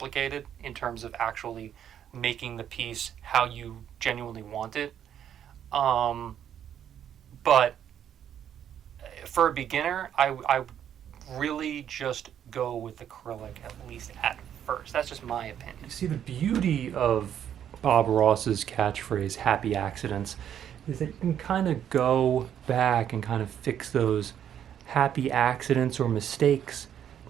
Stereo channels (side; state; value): left; quieter; 9.7 dB